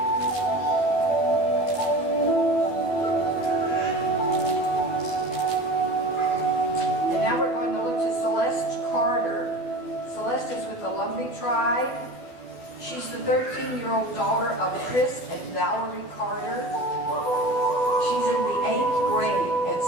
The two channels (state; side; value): late; right; 12 ms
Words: 13-year-old daughter of Chris and Valerie Carter. She's in the 8th grade at